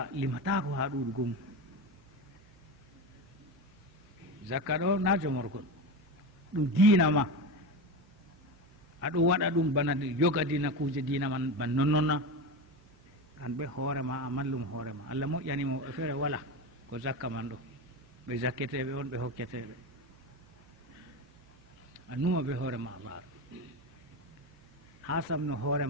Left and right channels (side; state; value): right; noise; hum, 28 dB below the sound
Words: limatako ha ɗuɗugo mum. Zakka ɗo na jomorgol, ɗum diina ma, aɗo waɗa ɗum bana yogadina kuje diina man ban nonnonna, an ɓe hoore ma a mallum hoore ma. Allah moƴƴanimo ɓe feere wala ko zakka man ɗo, ɓe zakketeɓe on ɓe hokketeɓe, a numa ɓe hoore ma Allah ha samno hoore